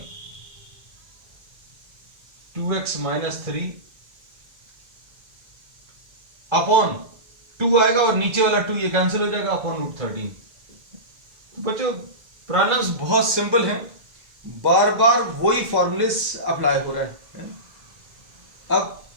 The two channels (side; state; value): left; late; 1.4 ms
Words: 2x minus 3 upon 2 आएगा और नीचे वाला 2 ये कैंसिल हो जाएगा अपॉन √13। बच्चों प्रॉब्लम्स बहुत सिंपल हैं, बार बार वही फॉर्मूलेस अप्लाई हो रहा है। अब